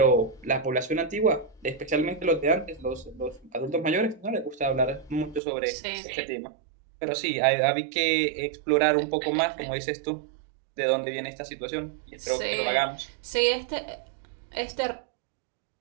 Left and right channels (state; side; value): drops out; left; at 5.4 s